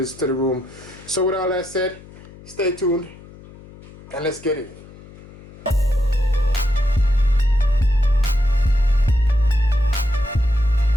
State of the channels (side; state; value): left; noise; hum, 20 dB below the sound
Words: to the room. So with all that said, stay tuned, and let's get it.